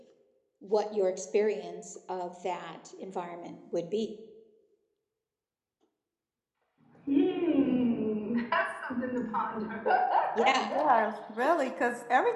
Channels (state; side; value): identical; both; correlation 1.00